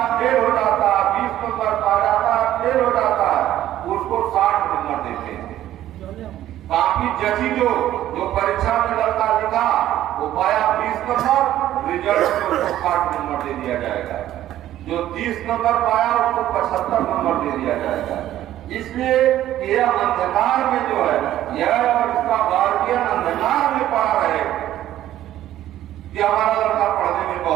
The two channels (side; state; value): left; quieter; 13.0 dB